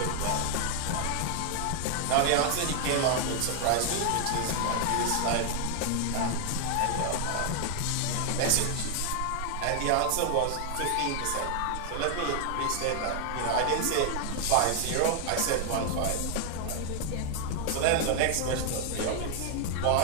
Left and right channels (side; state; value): both; different; correlation 0.00